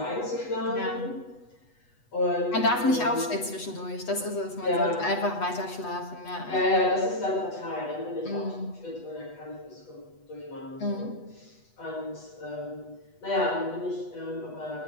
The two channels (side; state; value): right; late; 8.1 ms